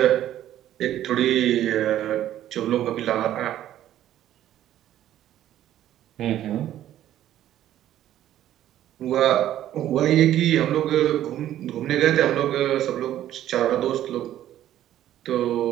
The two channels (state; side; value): quieter; left; 12.3 dB